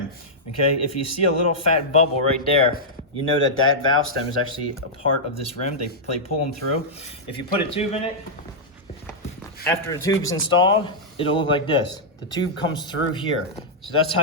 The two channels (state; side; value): normal; both; correlation -0.08